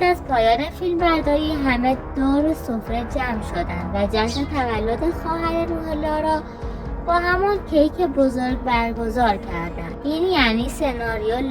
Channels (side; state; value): both; identical; correlation 1.00